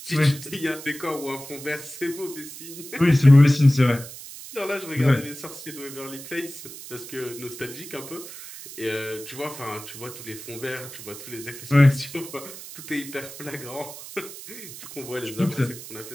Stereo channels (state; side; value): noise; right; hiss, 13 dB below the sound